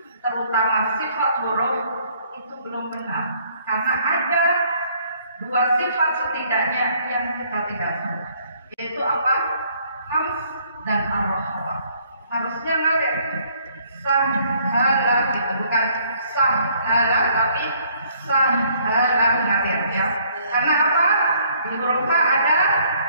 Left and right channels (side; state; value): both; inverted; correlation -0.63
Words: terutama sifat huruf itu belum benar, karena ada 2 sifat setidaknya yang kita tidak salah, yaitu apa? Hams dan ar-rakhwa. Harusnya ngalir sahala gitu, bukan sahala tapi sahala ngalir ya. Karena apa? Di huruf H ada